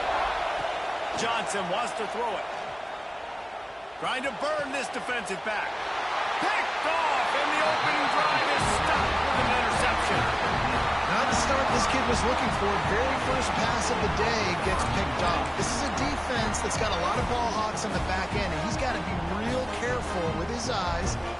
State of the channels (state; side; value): identical; both; correlation 1.00